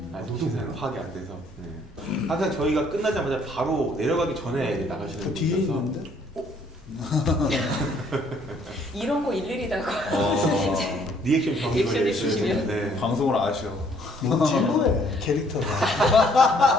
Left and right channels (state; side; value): normal; both; correlation 0.63